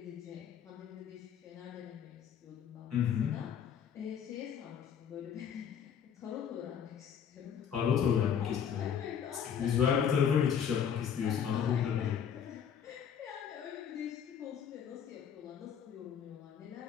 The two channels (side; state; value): right; quieter; 8.1 dB